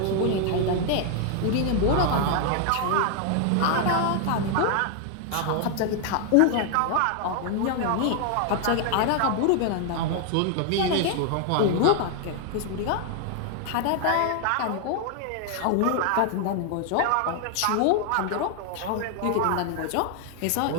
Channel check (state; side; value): different; both; correlation 0.00